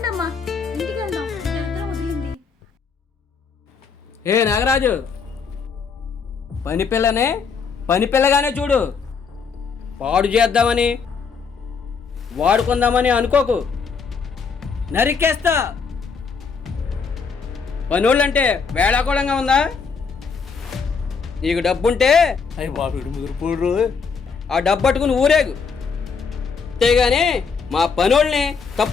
ఇంటికి వెళ్దాం. దరిద్రం వదిలింది. ఏ నాగరాజు, పని పిల్లనే పని పిల్లగానే చూడు. పాడు చేద్దామని వాడుకుందామని అనుకోకు, నరికేస్తా. పనోళ్ళంటే వేళాకోళంగా ఉందా? నీకు డబ్బుంటే అయ్యి బాబు ముదురుపోడు. ఆ డబ్బు పట్టుకుని ఊరేగు, అంతేగాని మా పనోళ్ళని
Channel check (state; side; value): quieter; right; 5.6 dB